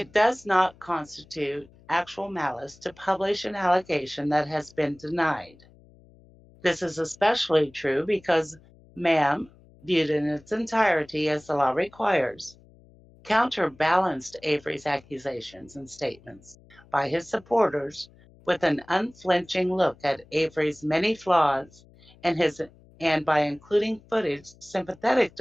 does not constitute actual malice to publish an allegation that has been denied. This is especially true because Ma'am, viewed in its entirety as the law requires, counterbalanced Avery's accusations and statements by his supporters with an unflinching look at Avery's many flaws and by including footage sympathetic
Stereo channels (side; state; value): left; noise; hum, 26 dB below the sound